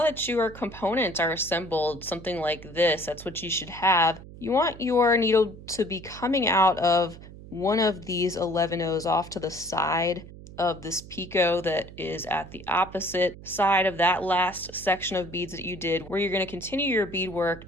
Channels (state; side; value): noise; right; hum, 16 dB below the sound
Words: that your components are assembled, something like this, that's what you should have. You want your needle to be coming out of one of these 11 O's off to the side of this picot that is at the opposite side of that last section of beads that you did, where you're going to continue your beadwork